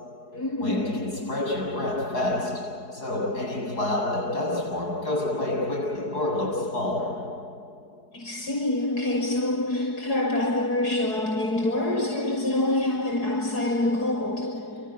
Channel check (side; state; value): right; late; 4.7 ms